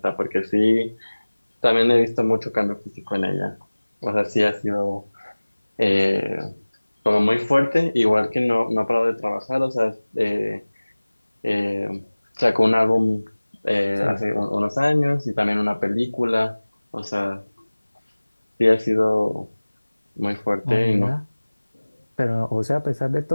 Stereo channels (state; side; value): inverted; both; correlation -1.00